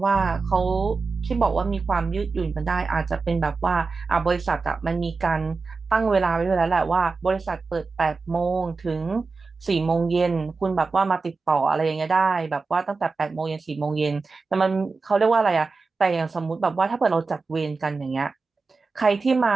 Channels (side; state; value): left; quieter; 4.2 dB